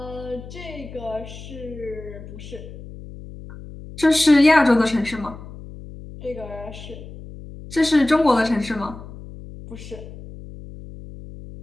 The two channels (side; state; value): left; noise; hum, 14 dB below the sound